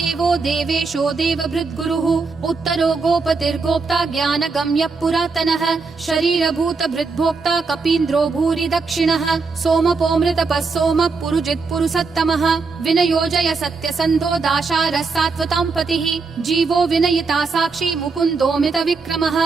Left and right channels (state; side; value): quieter; left; 4.4 dB